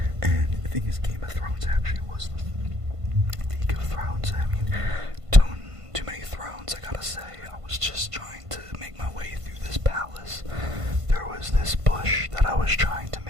And the thing is, Game of Thrones actually was the League of Thrones. I mean, too many thrones, I gotta say. I was just trying to make my way through this palace. There was this bush that I was trying to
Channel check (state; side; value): late; left; 1.5 ms